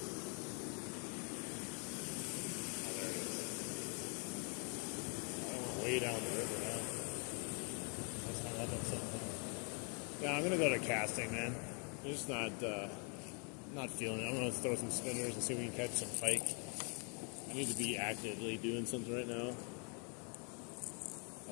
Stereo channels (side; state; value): right; quieter; 38.2 dB